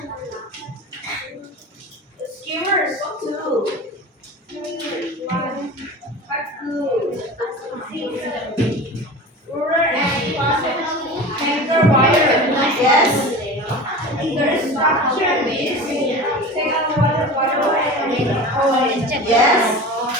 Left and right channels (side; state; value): both; normal; correlation 0.33